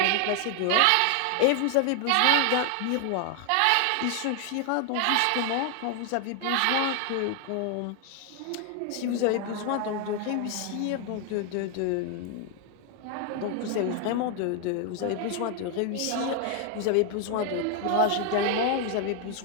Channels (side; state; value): both; different; correlation 0.00